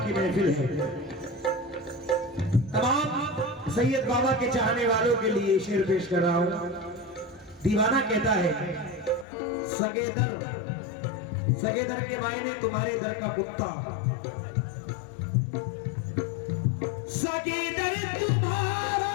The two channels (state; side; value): drops out; right; at 9.2 s